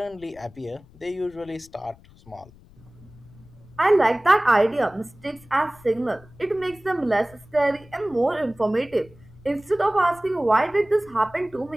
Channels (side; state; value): left; noise; rumble, 24 dB below the sound